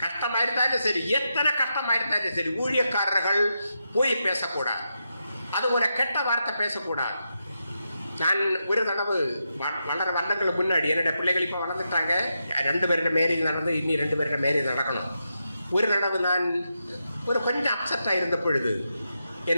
கஷ்டமா இருந்தாலும் சரி, எத்தனை கஷ்டமா இருந்தாலும் சரி, ஊழியக்காரர்கள் பொய் பேசக்கூடாது. அதுபோல கெட்ட வார்த்தை பேசக்கூடாது. நான் ஒரு தடவை வளர வருடங்களுக்கு முன்னாடி என்னுடைய பிள்ளைகள் இப்போ வளர்ந்துட்டாங்க. 2 பேருடைய மேரேஜ் நடந்து, இன்னி 2 பேருடைய மேரேஜ் நடக்கணும். ஒரு தடவை நான் ஒரு கொஞ்சம் அப்செட்டாக இருந்த பொழுது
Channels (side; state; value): both; inverted; correlation -0.86